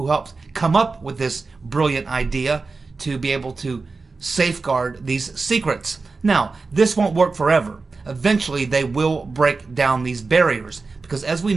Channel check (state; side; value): quieter; left; 4.1 dB